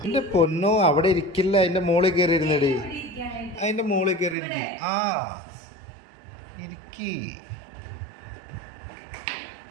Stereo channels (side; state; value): left; drops out; at 4.4 s